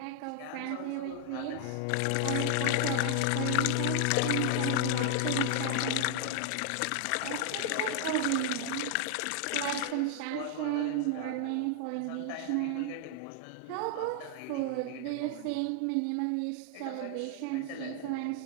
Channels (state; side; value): different; both; correlation 0.00